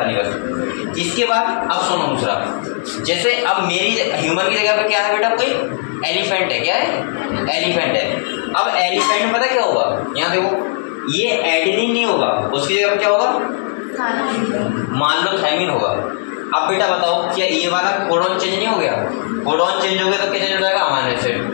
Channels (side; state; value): right; silent; digital silence